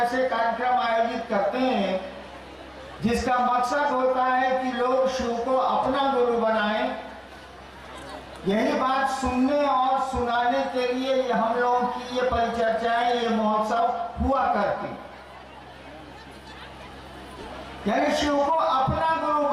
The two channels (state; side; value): identical; both; correlation 1.00